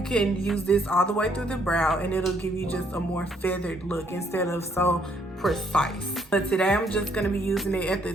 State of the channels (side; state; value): both; normal; correlation 0.68